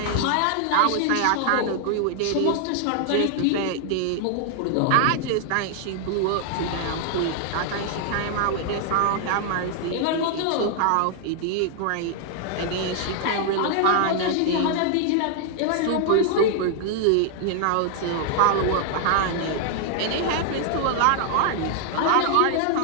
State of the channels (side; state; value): both; different; correlation 0.00